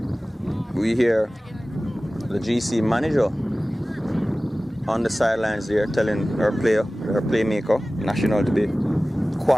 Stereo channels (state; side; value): normal; both; correlation 0.97